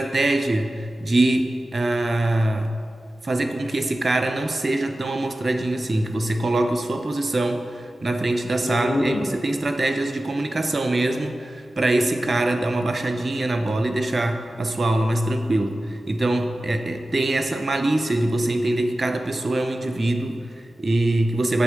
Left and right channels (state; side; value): normal; both; correlation 0.95